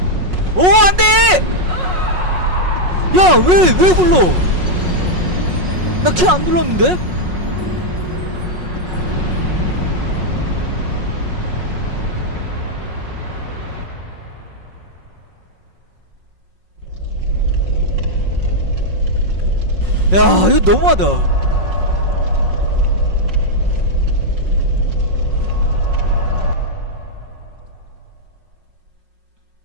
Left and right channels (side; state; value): left; late; 5.5 ms